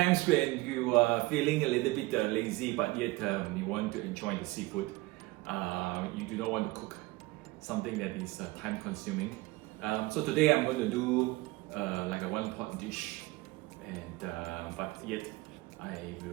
when you are feeling a little bit lazy but yet you want to enjoy the seafood, you do not want to cook something that is time consuming. So today I'm going to do like a one pot dish, and but yet I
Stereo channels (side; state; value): left; quieter; 20.9 dB